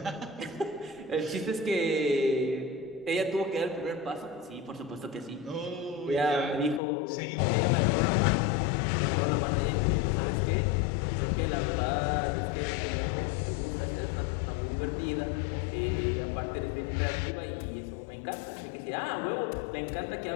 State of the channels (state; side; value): drops out; right; at 6.8 s